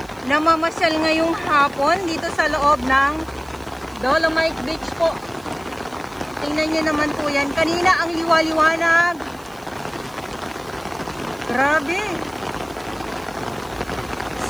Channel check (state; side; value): noise; right; hiss, 27 dB below the sound